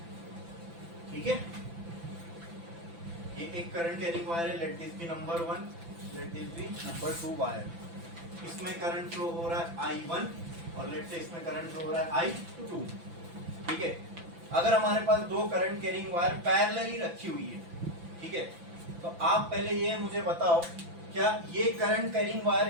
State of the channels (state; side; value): late; left; 5.9 ms